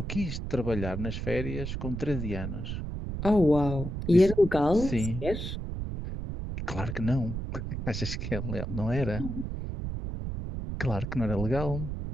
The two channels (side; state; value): right; noise; rumble, 5 dB below the sound